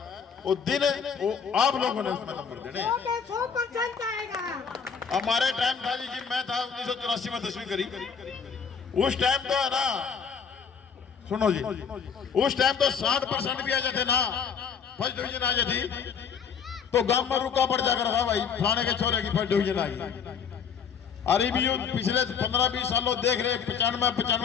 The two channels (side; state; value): right; quieter; 6.6 dB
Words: वो दिन वो आप लोगों ने उसमें नंबर देने। 100% आएगा। हमारे टाइम था जी, मैं था 1984 में 10वीं करी। उस टाइम तो है ना, सुनो जी, उस टाइम तो 60% भी आ जाते ना, फर्स्ट डिवीजन आ जाती तो गांव में रुका पड़ जाकर था भाई फलाने के छोरे की फर्स्ट डिवीजन आई। अरे भी पिछले 15-20 सालों देख रहे